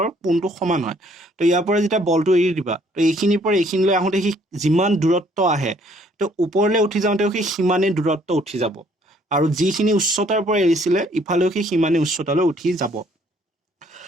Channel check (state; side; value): normal; both; correlation 0.63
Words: কোণটো সমান হয়। তো ইয়াৰ পৰা যেতিয়া বলটো এৰি দিবা তো এইখিনিৰ পৰা এইখিনিলৈ আহোঁতে সি যিমান দূৰত্ব আহে তো ওপৰলৈ উঠি যাওঁতেও সি সিমানেই দূৰত্ব উঠি যাব, আৰু যিখিনি উচ্চতাৰ পৰা এৰিছিলে ইফালেও সি সিমানেই উচ্চতালৈ উঠি যাব।